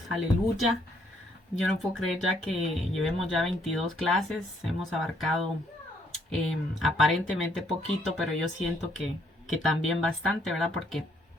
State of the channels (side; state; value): both; normal; correlation 0.69